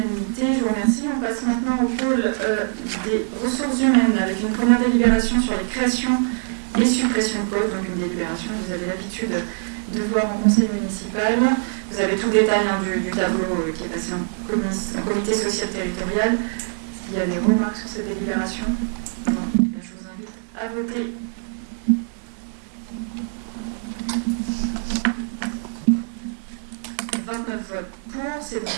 Je vous remercie. On passe maintenant au pôle des ressources humaines avec une première délibération sur les créations et suppressions de postes. Donc une délibération que vous avez l'habitude de voir en conseil municipal. Vous avez tout le détail du tableau qui est passé en comité social territorial. Est-ce qu'il y a des remarques sur cette délibération? Non. Je vous invite à voter. « 29 votes pour, c'est donc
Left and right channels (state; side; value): silent; left; 63 dB below the other